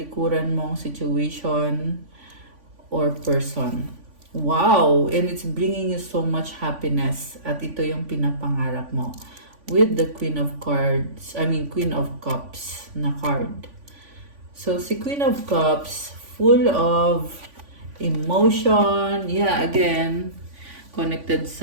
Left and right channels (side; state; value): left; late; 3.5 ms